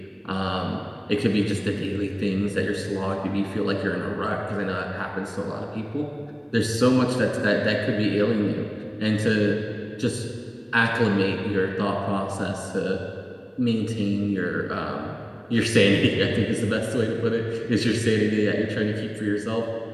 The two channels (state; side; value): identical; both; correlation 1.00